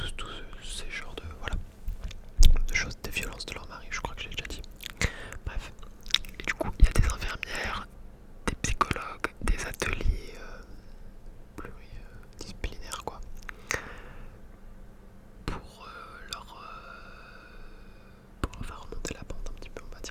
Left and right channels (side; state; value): both; identical; correlation 1.00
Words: ces genres de... Voilà, de choses, des violences de leur mari, je crois que j'ai déjà dit. Bref, et du coup il y a des infirmières, des psychologues, des ateliers pluridisciplinaires quoi, pour leur faire remonter la pente un petit peu on va